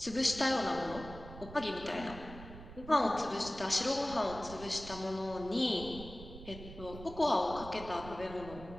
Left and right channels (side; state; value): right; noise; rumble, 14 dB below the sound